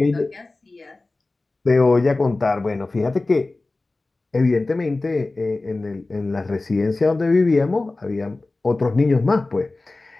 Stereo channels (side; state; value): right; quieter; 3.2 dB